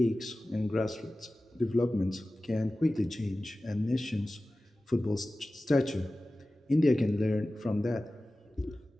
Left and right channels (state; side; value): normal; both; correlation 0.96